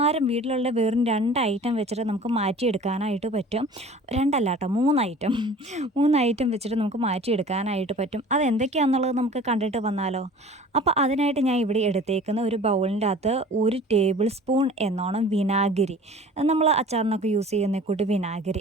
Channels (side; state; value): both; normal; correlation 0.44